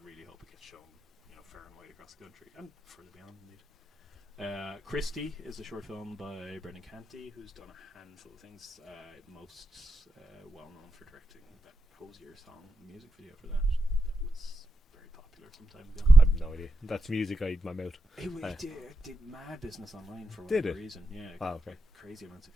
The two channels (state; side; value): normal; both; correlation 0.87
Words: really hope it gets shown, you know, far and wide across the country and further beyond, indeed. Christie is a short film by Brendan Canty, who's done a handful of things. Most well known for directing that Hosier song music video for that. That was very popular some time ago. I have no idea. That's music I eat in my mouth. It did mad business online for Did whatever it? reason. Yeah. Oh, okay. Crazy amounts of